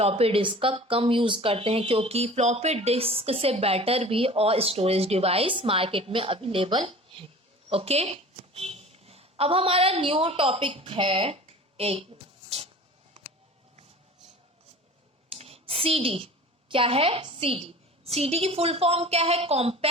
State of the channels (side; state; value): both; normal; correlation 0.41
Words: डिस्क का कम यूज करते हैं, क्योंकि फ्लॉपी डिस्क से बेटर भी और स्टोरेज डिवाइस मार्केट में अवेलेबल है। ओके, अब हमारा न्यू टॉपिक है एक CD। क्या है? CD की फुल फॉर्म क्या है?